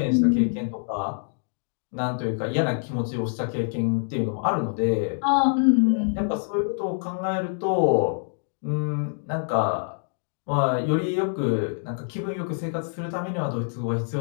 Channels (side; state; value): right; silent; digital silence